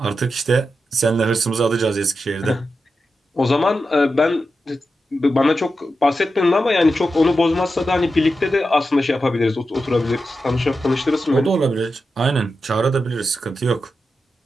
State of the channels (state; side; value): normal; both; correlation 0.89